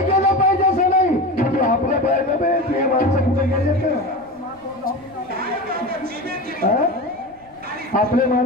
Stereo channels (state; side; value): noise; right; rumble, 28 dB below the sound